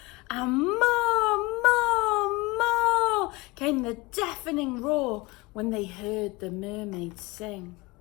and more, more, more came the deafening roar when they heard the mermaid sing.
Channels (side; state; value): right; quieter; 23.7 dB